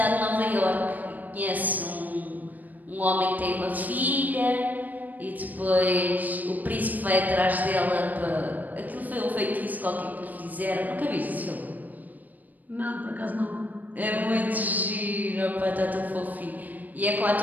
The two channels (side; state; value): left; late; 0.082 ms